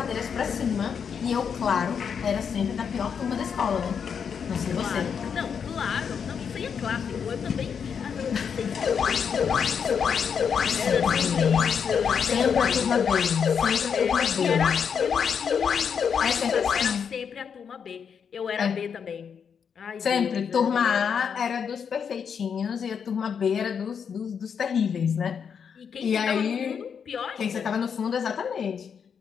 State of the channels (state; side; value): quieter; right; 7.0 dB